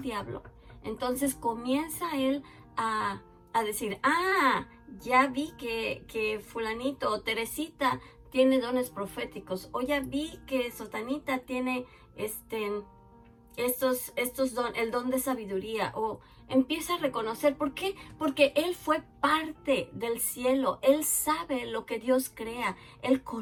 diablo, entonces comienza él a decir, ya vi que fulanito o Teresita tiene dones proféticos, o ya vi que Sotanita tiene el don de sabiduría, o empieza a reconocer. ¿Por qué? Porque él fue parte del cielo, él sabe lo que Dios crea, él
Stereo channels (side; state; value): both; identical; correlation 1.00